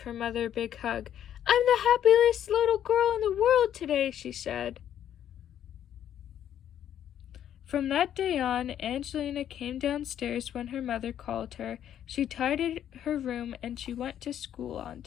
her mother a big hug. "I'm the happiest little girl in the world today," she said. From that day on, Angelina came downstairs when her mother called her. She tidied her room and she went to school on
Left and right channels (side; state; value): right; quieter; 10.3 dB